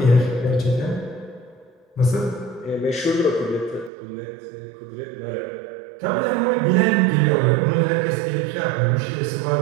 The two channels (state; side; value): drops out; left; at 3.9 s